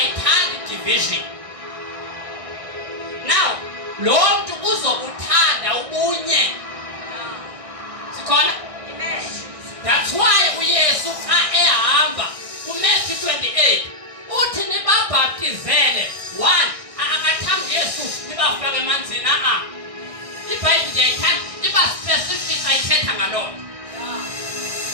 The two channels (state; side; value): late; left; 1.6 ms